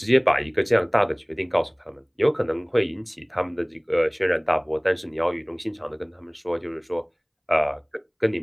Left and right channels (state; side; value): identical; both; correlation 1.00